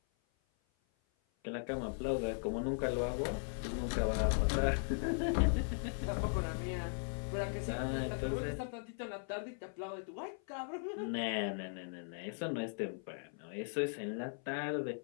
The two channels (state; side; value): silent; right; 52 dB below the other